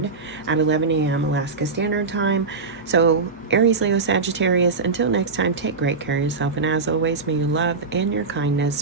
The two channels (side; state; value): left; quieter; 4.4 dB